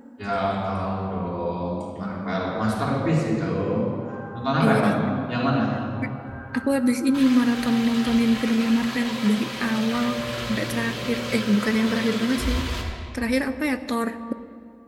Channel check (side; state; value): both; identical; correlation 1.00